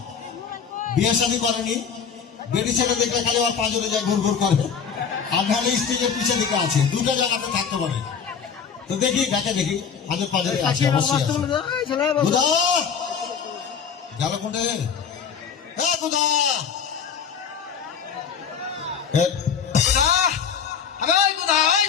বিয়ে শাদী করেনি, বেটি ছেলে দেখলে খালি আমার পাঁজরে যায় ঘুর ঘুর করে, আর নাহলে স্টেজের পিছের দিকে আছে, দুটো জায়গাতে থাকতে পারে। তো দেখি ডাকে, দেখি হাজার পাঁজরে আছে অবশ্যই। গুধা গেল কোনটা? গুধা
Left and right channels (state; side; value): quieter; right; 6.8 dB